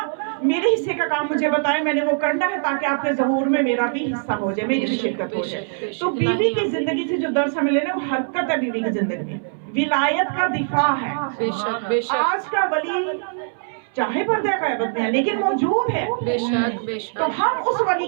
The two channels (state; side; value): silent; left; digital silence